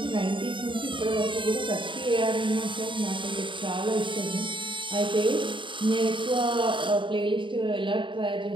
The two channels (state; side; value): late; left; 0.24 ms